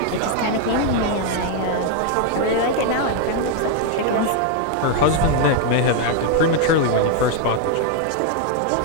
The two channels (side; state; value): both; different; correlation 0.01